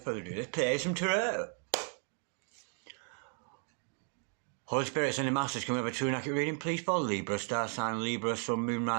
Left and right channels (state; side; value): quieter; left; 38.8 dB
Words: further ado, let's play some tarot. Holy Spirits and the Masters, can we have a true and accurate reading, please, for Libra, star sign Libra, Sun, Moon,